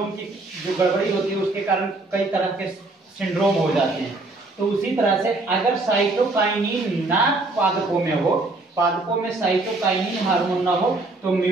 की जो गड़बड़ी होती है उसके कारण कई तरह के सिंड्रोम हो जाते हैं। तो उसी तरह से अगर साइटोकाइनिन ना पादपों में हो, पादपों में साइटोकाइनिन हार्मोन ना हो, तो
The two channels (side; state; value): left; quieter; 3.1 dB